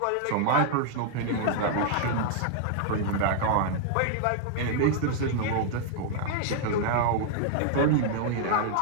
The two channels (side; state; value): both; different; correlation -0.01